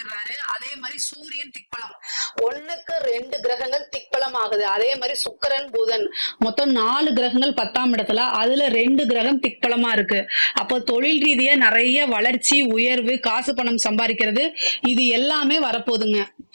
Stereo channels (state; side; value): inverted; both; correlation -1.00